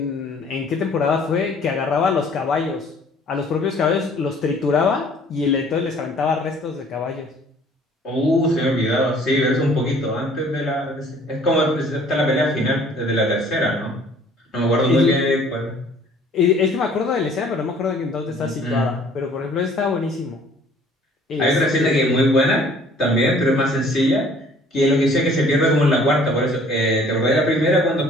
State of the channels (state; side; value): normal; both; correlation 0.55